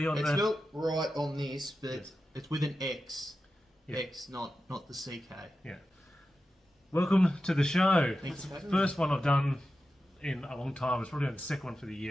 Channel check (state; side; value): normal; both; correlation 0.92